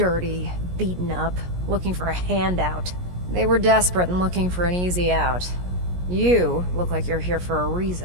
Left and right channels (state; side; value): late; left; 17 ms